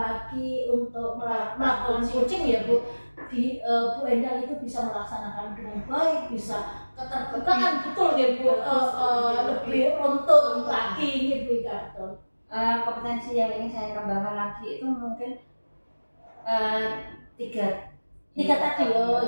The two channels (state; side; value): inverted; both; correlation -1.00